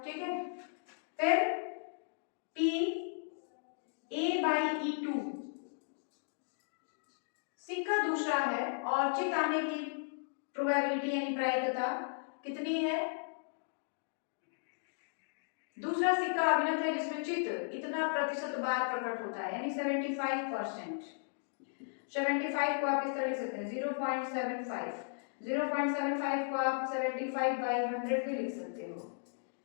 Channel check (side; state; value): right; silent; digital silence